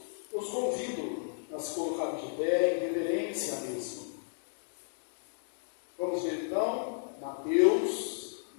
eu os convido a se colocar de pé em reverência à mesma. Vamos ver então, Mateus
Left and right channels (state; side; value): silent; right; digital silence